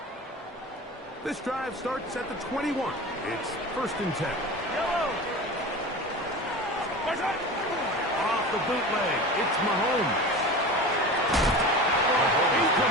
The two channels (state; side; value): normal; both; correlation 0.32